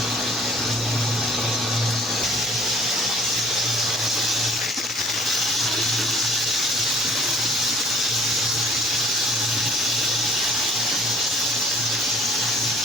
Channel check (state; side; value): normal; both; correlation 0.54